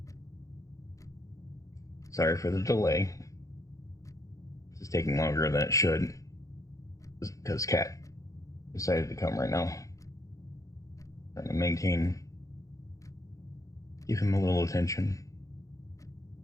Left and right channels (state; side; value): late; right; 0.16 ms